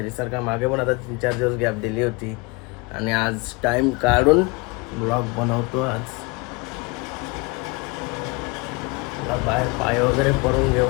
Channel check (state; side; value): quieter; right; 27.1 dB